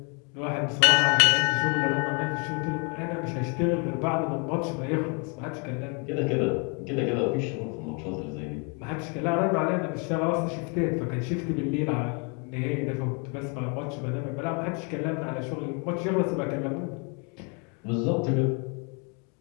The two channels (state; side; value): quieter; right; 35.2 dB